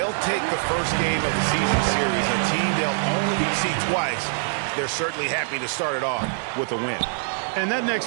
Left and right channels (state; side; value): silent; left; digital silence